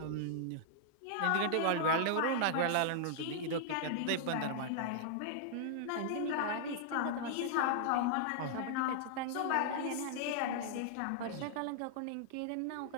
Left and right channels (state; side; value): different; both; correlation -0.01